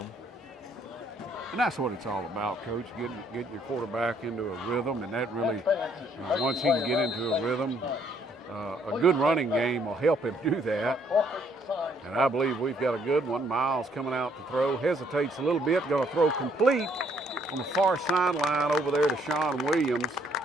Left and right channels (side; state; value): both; normal; correlation 0.67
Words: And that's what it's all about, Coach, getting your quarterback into a rhythm, and that really, once he can get into a rhythm, a good running game will help him do that. And I believe we've got a good one. Miles coming out to throw, hesitates a little bit, going to throw complete on the far sideline over there to Sean Williams.